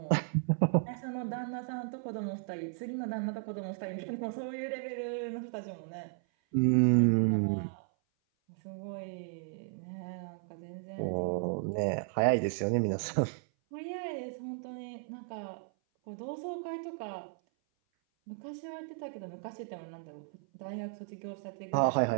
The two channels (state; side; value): silent; left; 55 dB below the other